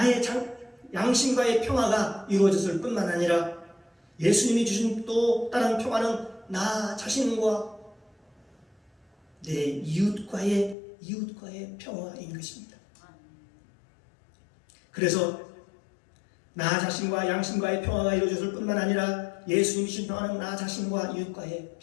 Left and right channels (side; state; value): right; drops out; at 10.8 s